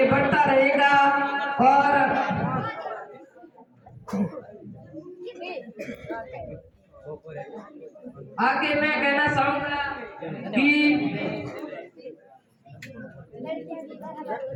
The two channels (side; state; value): both; identical; correlation 1.00